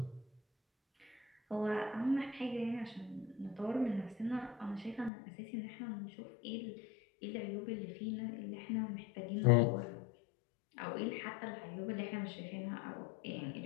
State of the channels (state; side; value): drops out; right; at 5.1 s